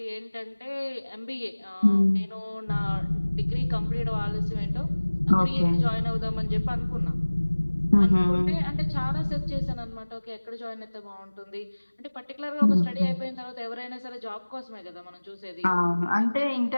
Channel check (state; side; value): inverted; both; correlation -1.00